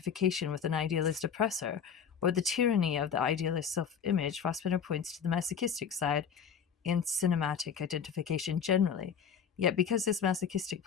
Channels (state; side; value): quieter; right; 7.1 dB